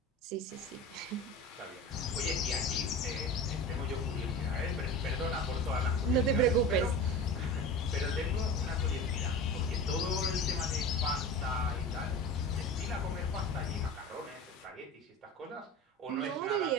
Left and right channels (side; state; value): both; normal; correlation 0.32